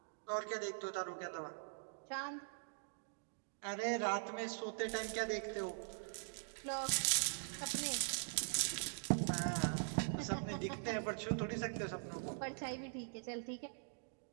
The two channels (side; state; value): left; silent; digital silence